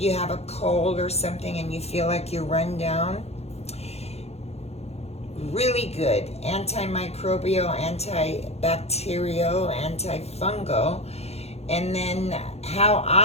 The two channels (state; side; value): late; right; 0.30 ms